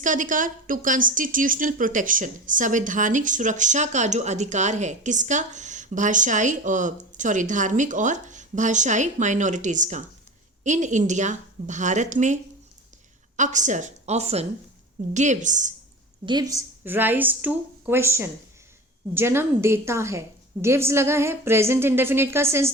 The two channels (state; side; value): normal; both; correlation 0.32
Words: अधिकार? टू कॉन्स्टिट्यूशनल प्रोटेक्शन, संवैधानिक सुरक्षा का जो अधिकार है। किसका? भाषाई और धार्मिक और भाषाई माइनॉरिटीज का। इन इंडिया, भारत में। अक्सर, often, gives rise to question, जन्म देता है। गिव्स लगा है, प्रेजेंट इंडेफिनिट का सेंस